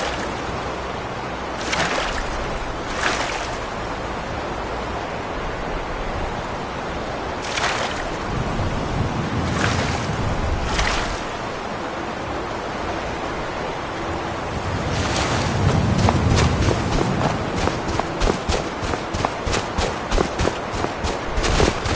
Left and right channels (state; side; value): identical; both; correlation 1.00